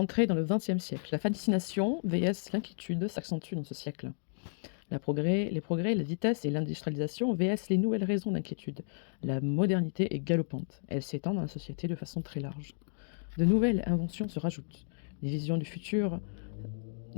dans le XXe siècle. La fascination vs l'inquiétude s'accentue dans ce siècle. Les progrès, la vitesse et l'industrialisation vs les nouvelles raisons d'inquiétude. La modernité est galopante. Elle s'étend dans la société de façon très large. De nouvelles inventions se rajoutent. Des visions du futur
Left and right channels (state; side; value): silent; right; digital silence